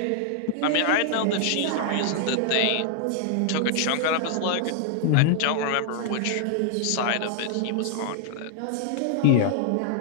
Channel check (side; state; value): both; different; correlation 0.00